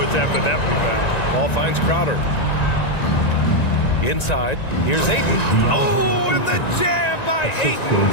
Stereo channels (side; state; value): right; late; 1.9 ms